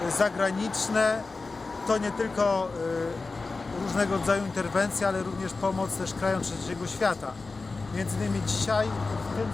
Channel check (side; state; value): right; quieter; 3.8 dB